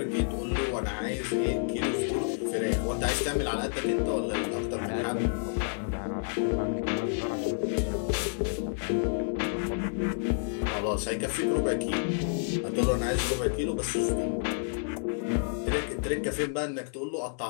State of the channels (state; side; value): silent; right; digital silence